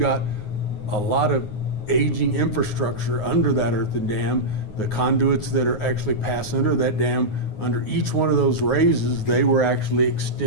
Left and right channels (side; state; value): right; late; 9.5 ms